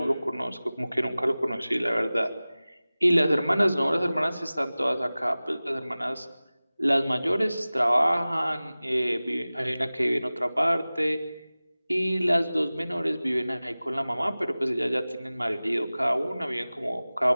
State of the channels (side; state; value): both; inverted; correlation -0.98